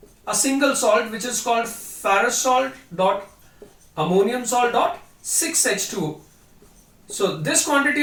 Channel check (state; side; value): identical; both; correlation 1.00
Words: a single salt which is called ferrous salt dot ammonium salt dot 6H2O. So this quantity